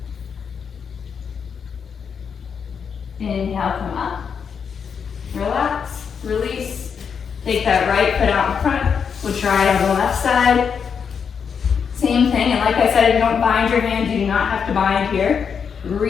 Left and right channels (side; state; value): right; quieter; 6.6 dB